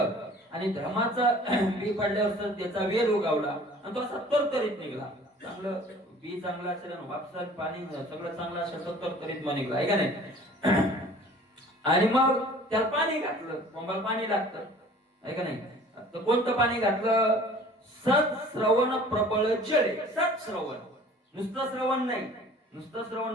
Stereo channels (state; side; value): normal; both; correlation 0.48